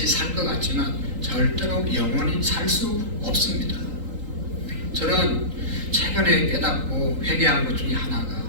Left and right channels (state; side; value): late; left; 3.8 ms